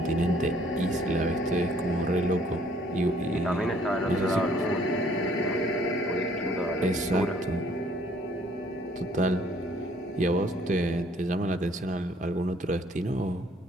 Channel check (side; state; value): both; normal; correlation 0.61